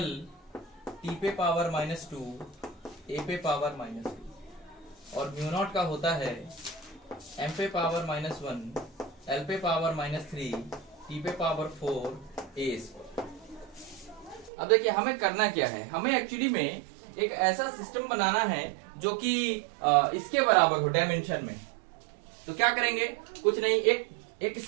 t पे पावर -2 a पे पावर -2, और म्यू नॉट का होता है m पे पावर -1 l पे पावर -3 t पे पावर 4 a²। अब देखिए हमें करना क्या है, हमें एक्चुअली में एक ऐसा सिस्टम बनाना है जो कि इसके बराबर हो डायमेंशन में। तो क्या करेंगे, कुछ नहीं, एक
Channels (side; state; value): left; drops out; at 14.5 s